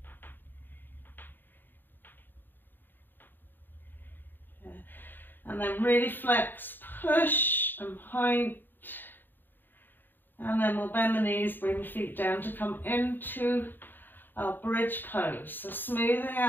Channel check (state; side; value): late; right; 0.093 ms